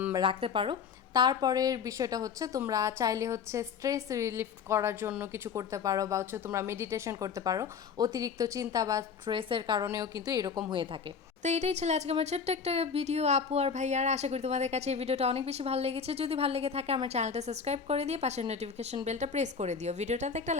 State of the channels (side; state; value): right; quieter; 6.3 dB